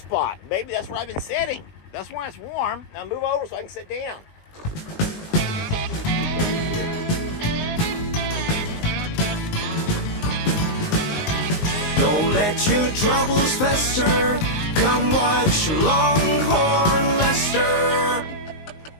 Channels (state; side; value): late; right; 19 ms